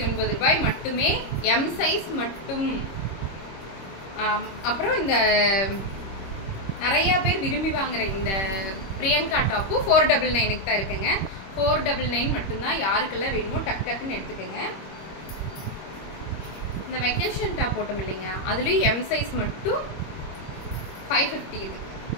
ரூபாய் மட்டுமே. எம் சைஸ் மட்டும். அப்புறம் இந்த நிறைய பேர் விரும்பி வாங்குற இந்த பிரியங்கா டாப்பு 499 தான் இருக்குங்க. 499 மட்டும்தான். யாருக்கெல்லாம் வேணுமோ டக் டக்குன்னு எடுத்துக்கோங்க. இந்த வெக்கேஷன் டாப் போட்டோம் இல்லைங்க, அதுலேயும் எம் சைஸ் மட்டும் 550.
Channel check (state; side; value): late; right; 26 ms